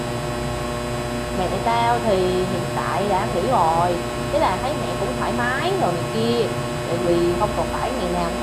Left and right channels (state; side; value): identical; both; correlation 1.00